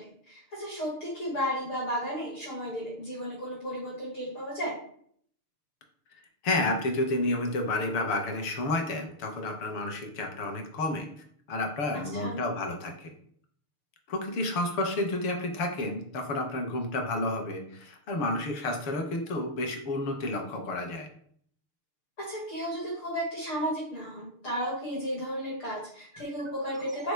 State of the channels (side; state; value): right; late; 6.7 ms